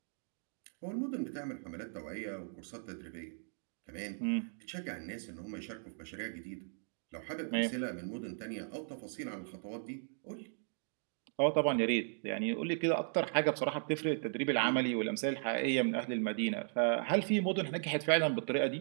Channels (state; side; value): silent; left; digital silence